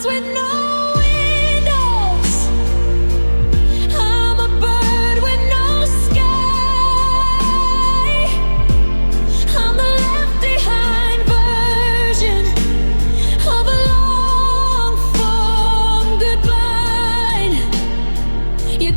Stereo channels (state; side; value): inverted; both; correlation -1.00